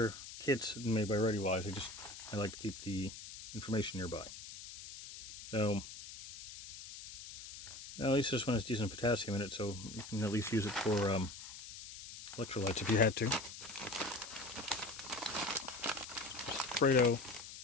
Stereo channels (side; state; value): left; noise; hiss, 12 dB below the sound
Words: kits made by ReadyWise. I like to keep the information nearby. So at least this one has decent potassium in it, so you can at least use it for electrolytes if you had to. Alfredo.